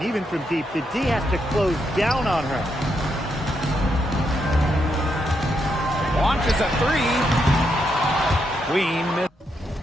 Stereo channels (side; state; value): both; normal; correlation 0.80